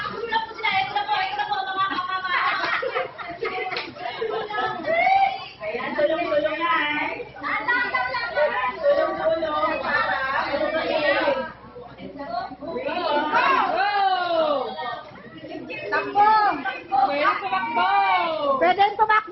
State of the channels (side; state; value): both; identical; correlation 1.00